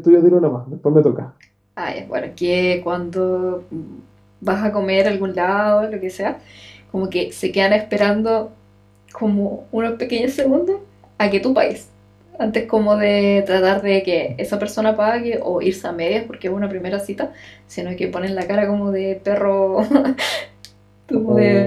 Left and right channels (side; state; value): both; identical; correlation 1.00